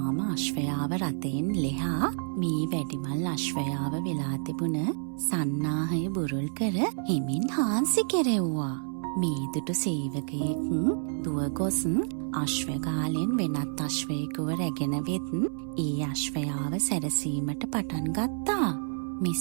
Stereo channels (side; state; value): left; silent; 59 dB below the other